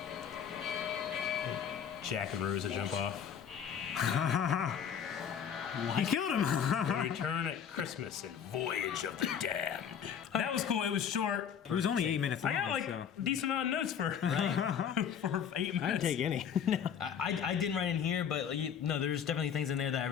Jack and Rosa jump off. He killed him. Return at Christmas and Voyage of the Damned. That was cool. It was short. It was only 8 minutes long. I got like so. a decent amount of notes for for 8 minutes. I'd take any. I didn't write in here, but no, there's definitely things in there that I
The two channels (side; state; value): right; quieter; 8.1 dB